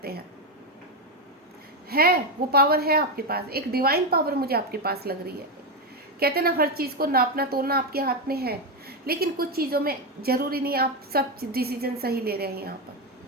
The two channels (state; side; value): normal; both; correlation 0.09